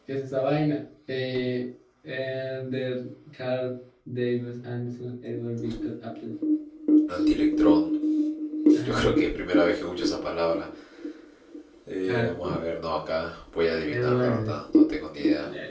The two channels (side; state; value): both; identical; correlation 1.00